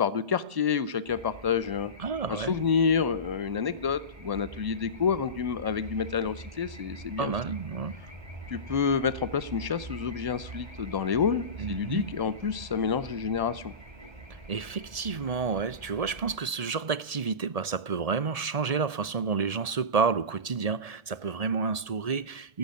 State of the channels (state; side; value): late; left; 1.7 ms